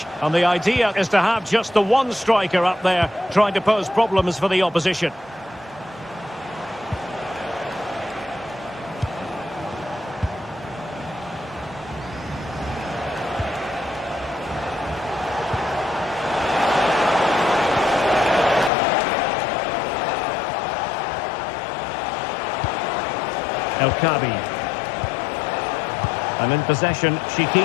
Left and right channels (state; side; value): drops out; right; at 18.7 s